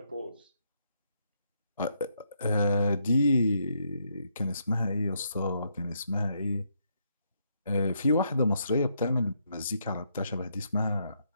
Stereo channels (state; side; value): inverted; both; correlation -0.77